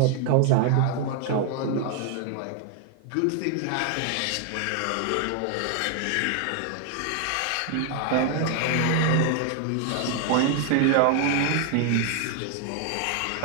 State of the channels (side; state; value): both; different; correlation 0.00